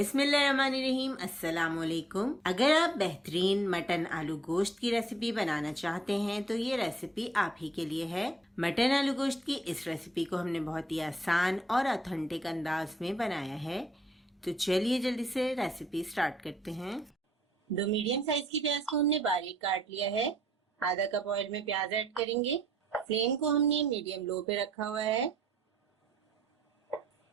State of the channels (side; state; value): both; normal; correlation 0.68